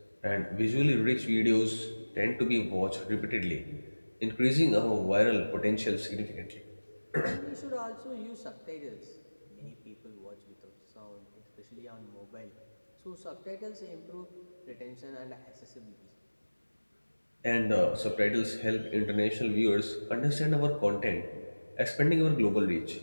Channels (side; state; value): both; inverted; correlation -1.00